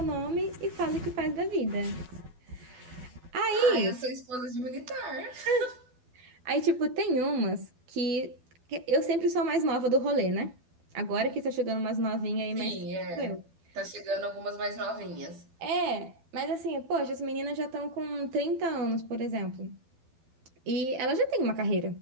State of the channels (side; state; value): left; late; 12 ms